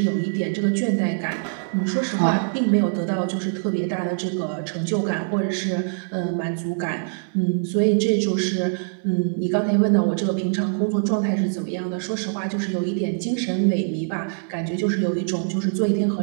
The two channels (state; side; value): silent; left; digital silence